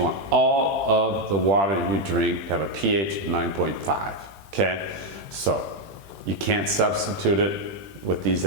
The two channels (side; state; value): left; late; 20 ms